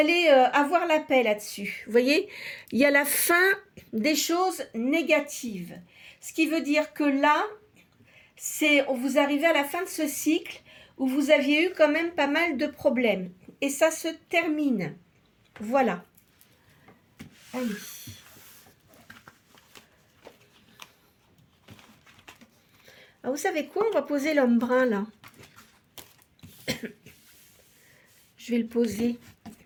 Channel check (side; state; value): both; identical; correlation 1.00